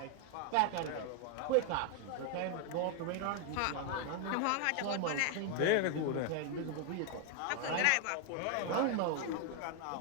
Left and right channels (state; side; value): different; both; correlation 0.00